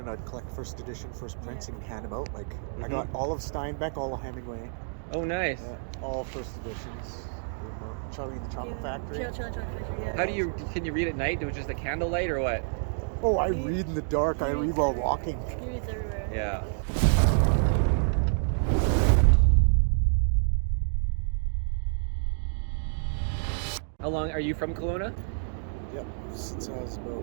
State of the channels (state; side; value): silent; left; digital silence